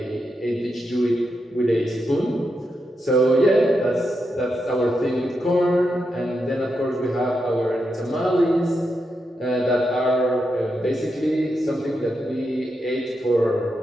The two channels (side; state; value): both; normal; correlation 0.85